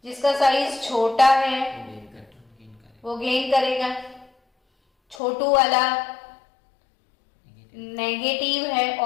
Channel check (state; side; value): drops out; right; at 5.2 s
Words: जिसका साइज छोटा है वो gain करेगा. वो गेन करेगा. छोटू वाला नेगेटिव है